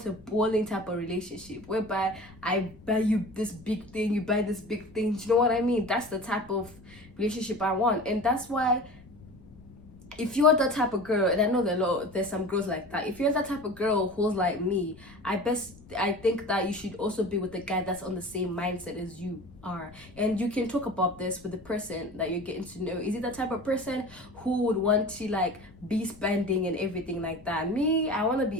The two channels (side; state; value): left; noise; rumble, 23 dB below the sound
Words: a bowling type of relationship whereby I buy you this big thing, you buy this big thing. Do you know what I mean? That's the type of relationship I want. And that's why, if you're that type of girl, and I know there's some girls like that, if you're that type of girl who's like me, I think that you should also be with a guy that's on the same mindset as you are. And you can talk about this with the person that you're getting to know. Is it the type of person who would want to, like, be spending and everything like that? Me, I want to